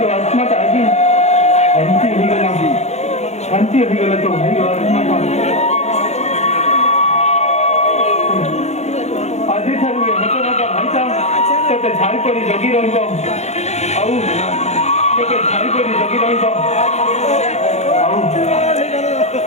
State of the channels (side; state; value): right; late; 0.32 ms